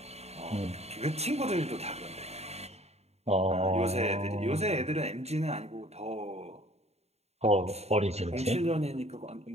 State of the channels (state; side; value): late; left; 0.31 ms